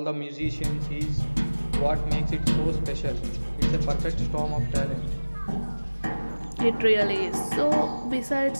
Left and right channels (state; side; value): inverted; both; correlation -1.00